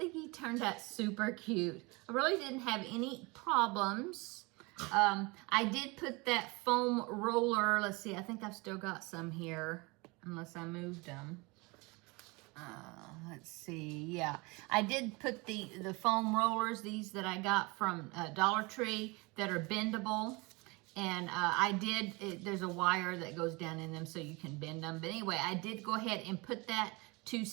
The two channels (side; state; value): left; quieter; 26.3 dB